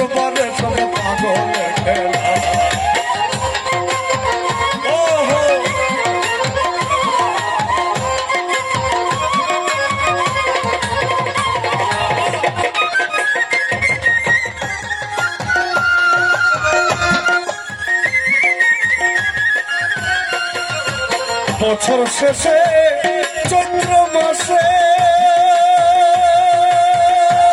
সব পাগলের খেলা। বছর শেষে চৈত্র মাসে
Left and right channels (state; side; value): identical; both; correlation 1.00